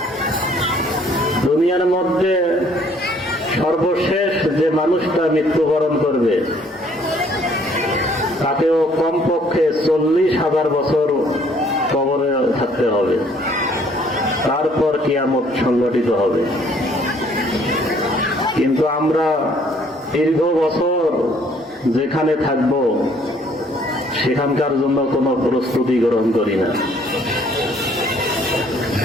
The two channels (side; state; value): both; normal; correlation 0.61